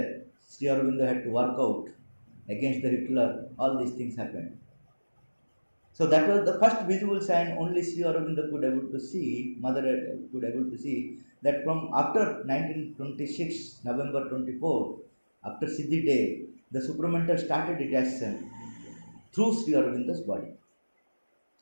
Sri Aurobindo had to work out against the Hitler. All these things happened. So that was the first visible sign only Sri Aurobindo could able to see, mother could able to see, that from after 1926, November 24, after Siddhi day, the supramental started its action through Sri Aurobindo's body.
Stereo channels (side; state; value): both; inverted; correlation -1.00